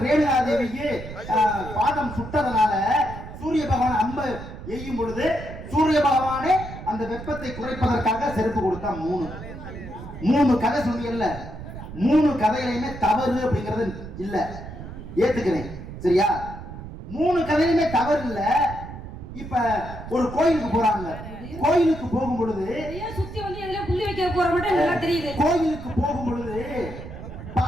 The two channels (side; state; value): right; noise; rumble, 11 dB below the sound